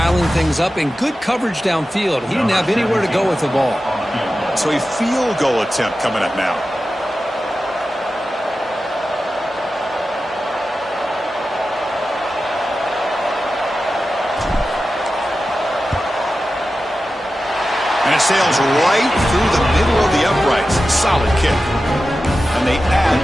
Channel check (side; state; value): both; normal; correlation 0.93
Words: things up, and good coverage downfield. He didn't have anywhere to go with the ball. So a field goal attempt coming up now. And it sails right through the middle of the uprights. Solid kick. And they